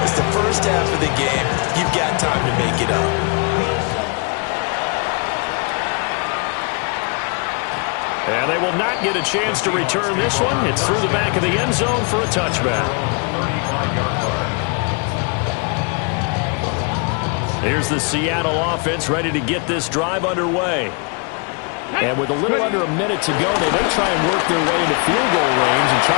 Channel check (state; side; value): quieter; right; 35.1 dB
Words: It's the first half of the game. You've got time to make it up. And they will not get a chance to return this one. It's through the back of the end zone for a touchback. 35-yard line. Here's the Seattle offense ready to get this drive underway. And with a little under a minute to go, they may try and work their way into field goal range and